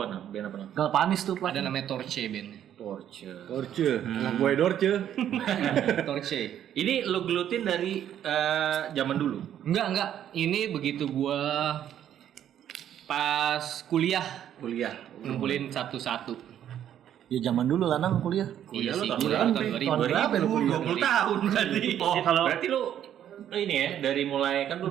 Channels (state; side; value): quieter; left; 10.4 dB